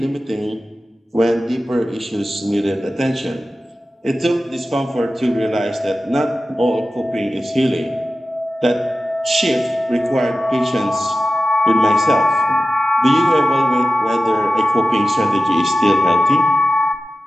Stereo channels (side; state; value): both; normal; correlation 0.95